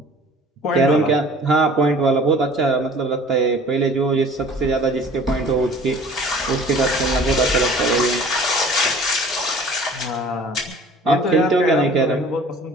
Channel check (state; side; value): normal; both; correlation 0.48